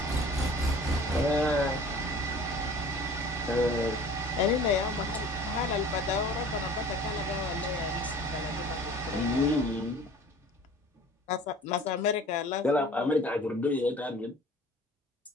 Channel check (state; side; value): normal; both; correlation 0.46